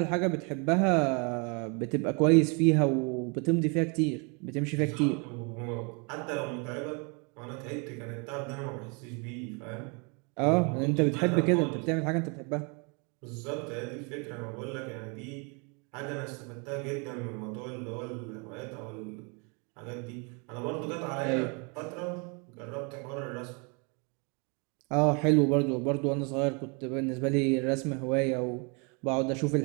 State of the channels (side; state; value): left; quieter; 33.4 dB